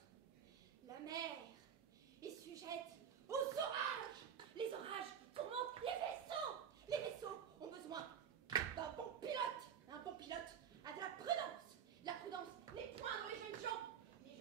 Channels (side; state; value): left; quieter; 7.9 dB